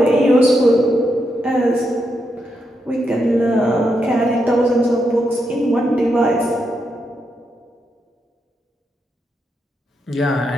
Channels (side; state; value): both; normal; correlation 0.83